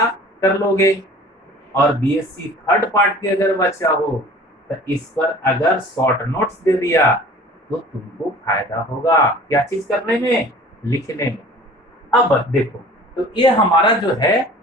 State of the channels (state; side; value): normal; both; correlation 0.46